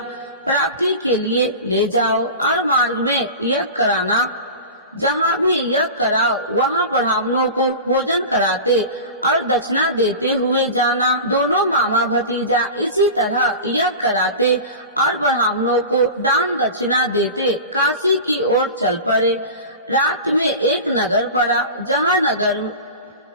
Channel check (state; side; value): inverted; both; correlation -0.32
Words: प्राप्ति के लिए ले जाओ और मार्ग में यज्ञ कराना। जहाँ भी यज्ञ कराओ वहाँ ब्राह्मणों को भोजन कराते और दक्षिणा देते हुए जाना। दोनों मामा भतीजा इसी तरह यज्ञ कराते और ब्राह्मणों को दान दक्षिणा देते काशी की ओर चल पड़े। रात में एक नगर पड़ा, जहाँ नगर